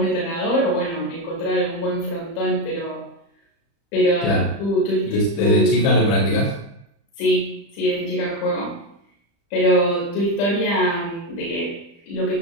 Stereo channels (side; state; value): right; late; 35 ms